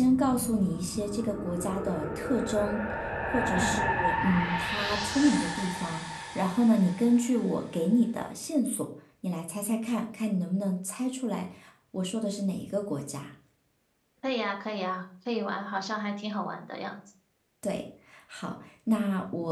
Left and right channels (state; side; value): identical; both; correlation 1.00